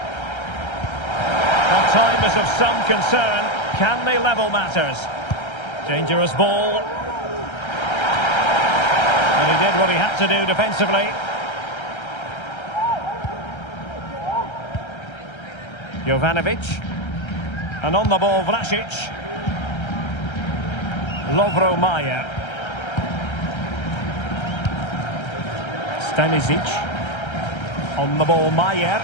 Well, time is of some concern. Can they level matters? Dangerous ball. And he did what he had to do defensively. Jovanovic. And on the ball, Vlasic. Lovro Majer. Stanisic. On the ball, Majer.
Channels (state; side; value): late; right; 1.3 ms